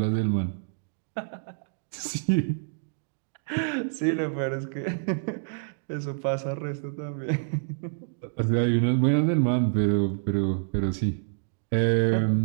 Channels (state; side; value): silent; left; digital silence